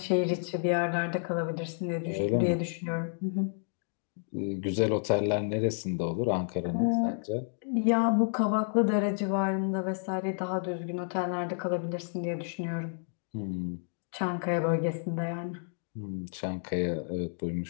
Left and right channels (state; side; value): silent; right; digital silence